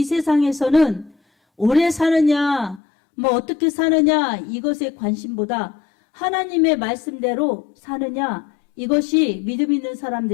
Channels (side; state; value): right; drops out; at 2.8 s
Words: 세상에서는 오래 사느냐, 어떻게 사느냐, 이것에 관심보다 하나님의 말씀대로 사느냐, 이것이 믿음 있는